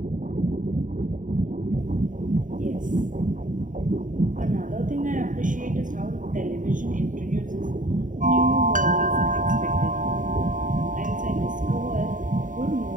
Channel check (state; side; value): late; left; 0.38 ms